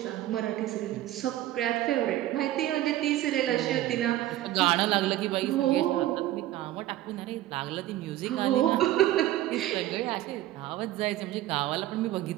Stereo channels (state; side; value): quieter; left; 14.4 dB